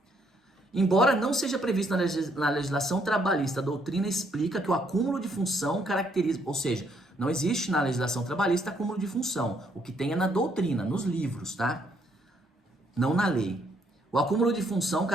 Embora não seja previsto na legislação trabalhista, a doutrina explica que o acúmulo de função caracteriza, ou seja, não existe na legislação trabalhista acúmulo de função. O que tem é na doutrina, nos livros, tá? Não na lei. O acúmulo de função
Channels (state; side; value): normal; both; correlation 0.70